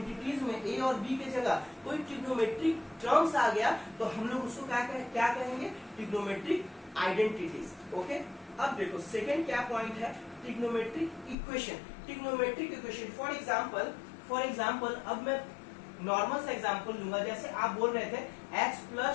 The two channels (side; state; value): right; drops out; at 11.4 s